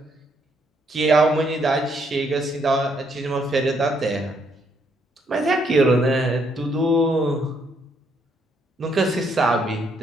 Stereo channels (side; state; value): both; normal; correlation 0.71